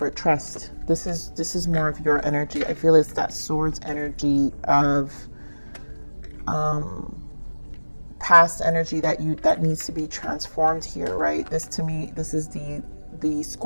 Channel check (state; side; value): inverted; both; correlation -1.00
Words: trust. This is more of your energy. I feel it's that swords energy of past energy that needs to be transformed here, right? This, to me, this is the